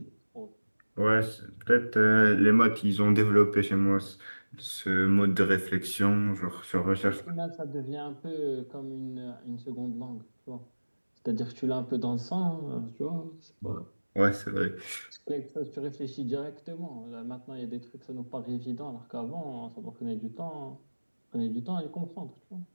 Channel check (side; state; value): both; inverted; correlation -1.00